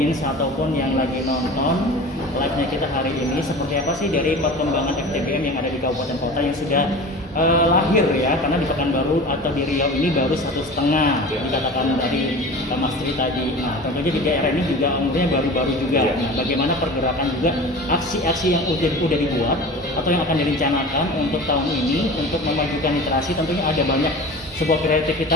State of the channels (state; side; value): normal; both; correlation 0.36